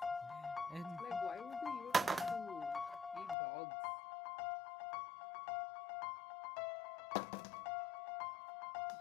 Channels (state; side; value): drops out; right; at 3.4 s